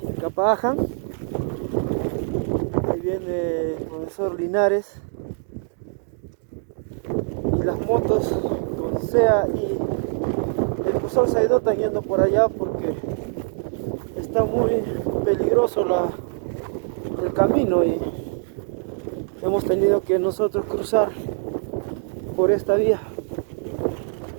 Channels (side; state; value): left; silent; 63 dB below the other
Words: Capaaján. Ahí viene el profesor Linares y las motos con SEA y el profesor Saido están yendo por allá porque está muy peligroso el camino y hemos tenido que nosotros cruzar por esta vía.